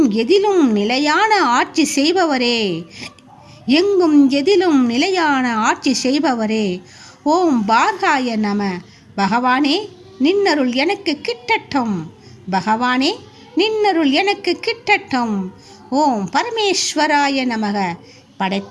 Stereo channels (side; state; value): both; identical; correlation 1.00